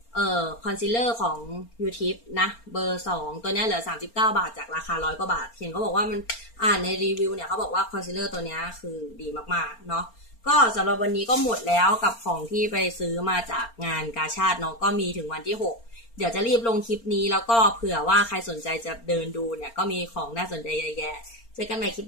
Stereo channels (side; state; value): right; late; 4.4 ms